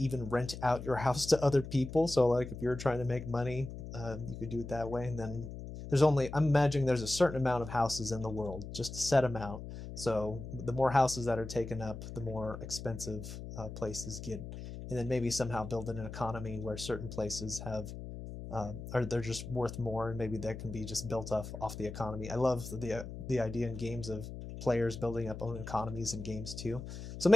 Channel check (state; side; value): noise; left; hum, 10 dB below the sound